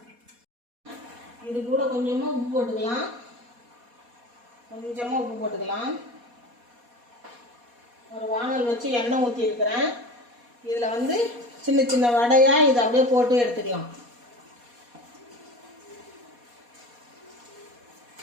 இது கூட கொஞ்சமாக உப்பு போட்டுக்கலாம். ஒரு வானல் வச்சு எண்ணெய் ஊற்றி இருக்கிறேன். இதில் வந்து சின்ன சின்ன வடையாக இதை அப்படியே போட்டு எடுத்துக்கலாம்.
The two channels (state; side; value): late; left; 4.2 ms